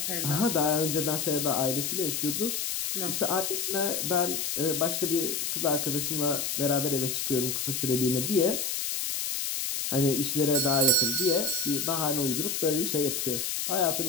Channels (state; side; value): noise; left; hiss, 1 dB below the sound